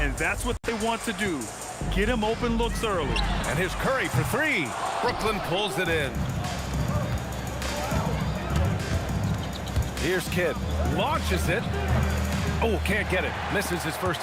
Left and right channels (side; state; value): both; identical; correlation 1.00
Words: that's what they want to do. Get him open looks early. And here's Curry for three. Brooklyn pulls it in. Here's Kidd. Launches it. Oh, can't get it. Misses his first